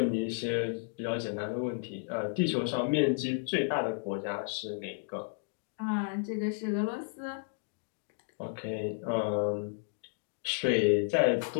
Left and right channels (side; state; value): right; silent; digital silence